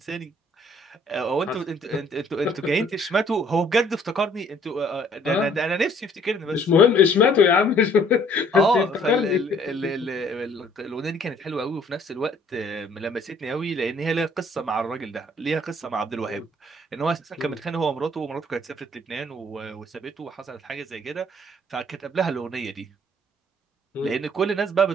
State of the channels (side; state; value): both; normal; correlation 0.59